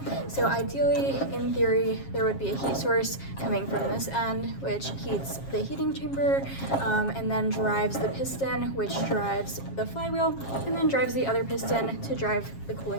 So ideally, in theory, there would be a heat source coming from this end, which heats the heating chamber, and then drives the piston, which drives the flywheel, and then drives the other piston to drive the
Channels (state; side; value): late; right; 7.4 ms